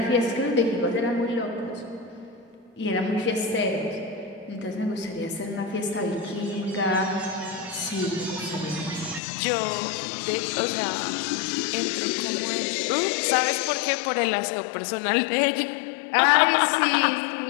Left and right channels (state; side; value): drops out; right; at 9.2 s